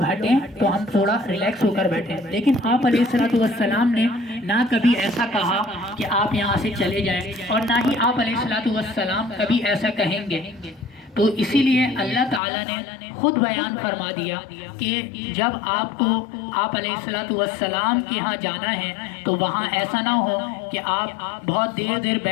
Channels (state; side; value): drops out; right; at 12.4 s